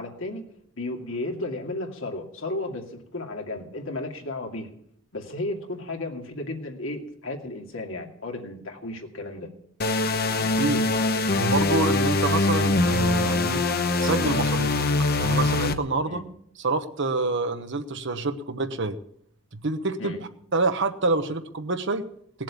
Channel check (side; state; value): both; normal; correlation 0.21